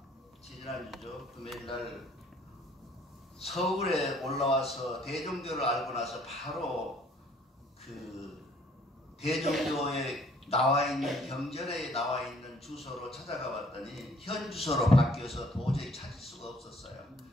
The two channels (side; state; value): both; normal; correlation 0.60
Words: 지난주죠. 금요일날 서울에 올라와서 대종교를 알고 나서 바로 그 대종교에 나와 있는 경전에 나와 있는 주소로 찾아가 봤더니 현 주소로 바뀌어서 도저히 찾을 수가 없었어요.